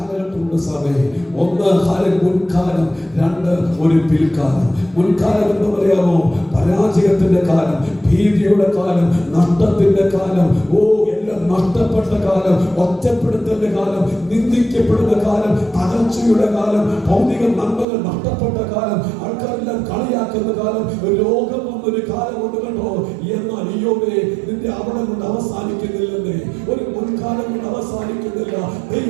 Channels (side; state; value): left; drops out; at 17.9 s